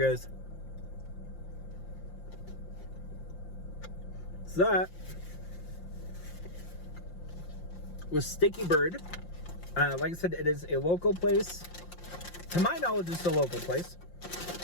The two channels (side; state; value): right; late; 5.7 ms